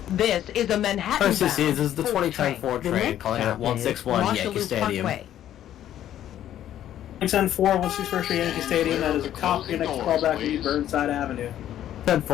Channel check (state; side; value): quieter; right; 11.6 dB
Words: This is a Manhattan bound RCC, this is the 4 2010 4 The train next calling at stop is 161 Yankee Marshallou Stadium. Parkway. 10-4, 161st Street, Yankee Stadium. That is a copy. Your next callback will be Burnside Avenue.